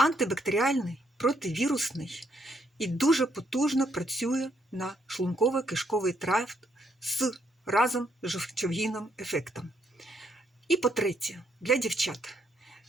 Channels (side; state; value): both; normal; correlation 0.73